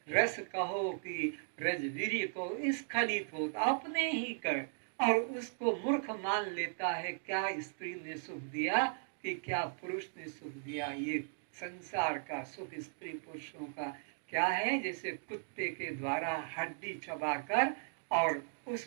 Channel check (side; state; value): left; silent; digital silence